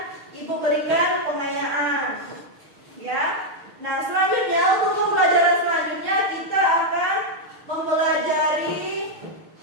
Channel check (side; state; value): left; late; 6.5 ms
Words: ibu berikan pengayaan. Ya. Nah, selanjutnya untuk pembelajaran selanjutnya kita akan mempelajari